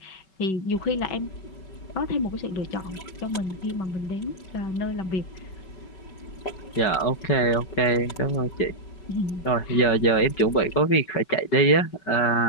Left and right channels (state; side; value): late; right; 5.3 ms